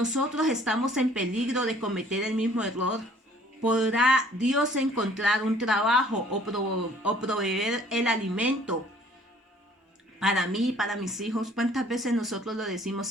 estamos en peligro de cometer el mismo error. ¿Podrá Dios encontrar un trabajo o proveer el alimento para mí y para mis hijos. ¿Cuántas veces nosotros lo decimos?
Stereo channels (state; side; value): normal; both; correlation 0.56